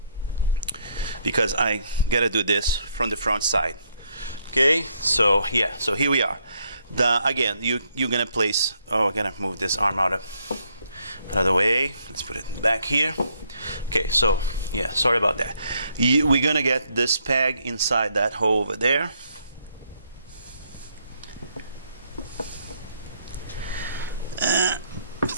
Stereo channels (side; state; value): both; inverted; correlation -0.72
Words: because I gotta do this from the front side. Okay, so yeah, so here we are. Again, you're gonna place. Oh, I gotta move this arm out of the way. Let's put it back here. Okay, so yeah, sorry about that. We're gonna get this peg inside that hole over there.